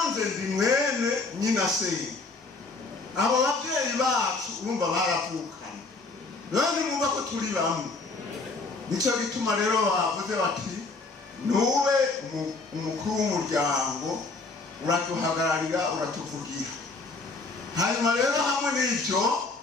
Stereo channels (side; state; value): right; quieter; 3.7 dB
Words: ndi mwene nyina se. Abo babyeyi bacu urumva baravukanye, none mwumva ko turi bamwe. Nico gituma rero bavuze bati nube umukuru w'umuryango, uratuhagararira, uratuvugira. Hanyuma rero hamwe n'ibyo